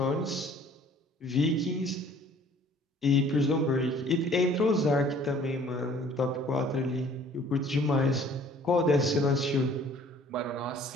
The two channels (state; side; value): normal; both; correlation 0.54